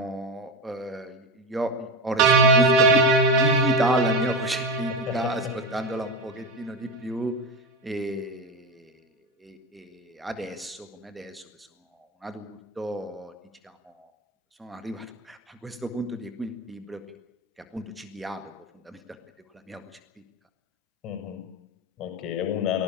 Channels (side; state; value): both; normal; correlation 0.18